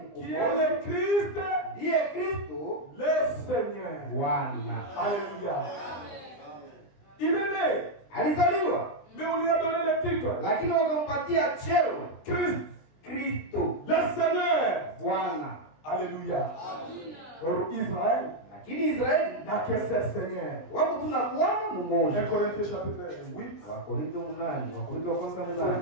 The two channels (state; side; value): late; right; 20 ms